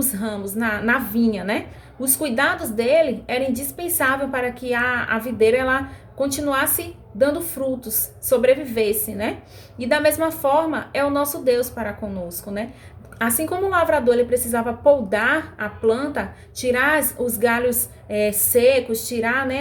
ramos, na vinha, né? Os cuidados dele eram indispensáveis para que a videira ela continuasse dando frutos, sobrevivesse, né? E da mesma forma é o nosso Deus para conosco, né? Assim como o lavrador ele precisava podar a planta, tirar os galhos secos, tirar,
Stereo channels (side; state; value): both; identical; correlation 1.00